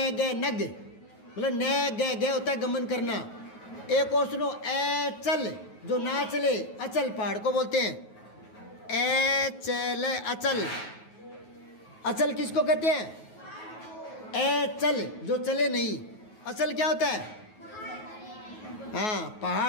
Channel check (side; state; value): right; late; 9.3 ms